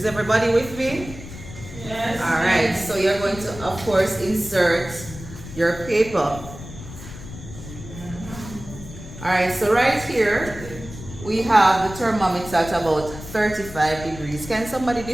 everybody with me? Yes. Alright, so you're going to, of course, insert your paper. Alright, so right here, we have the thermometer at about 35 degrees. Can somebody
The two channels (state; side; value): noise; left; rumble, 13 dB below the sound